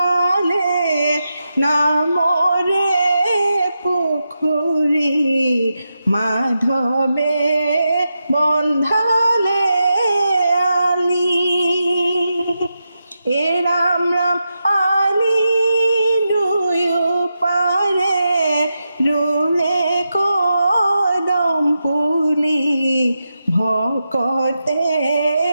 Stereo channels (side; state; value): both; inverted; correlation -0.88